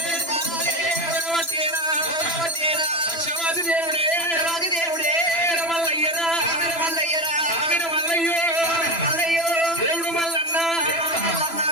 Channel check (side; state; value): right; late; 3.0 ms